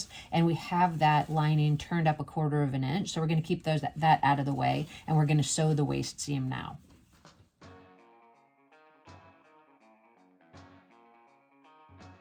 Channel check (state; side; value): identical; both; correlation 1.00